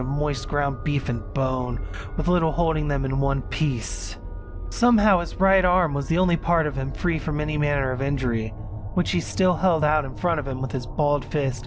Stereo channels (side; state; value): both; identical; correlation 1.00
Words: moist ground beef and bone, with little holding them in one piece. Somehow his right arm was the only part of him free from any manner of injury, which he still held out in front of him with his balled fist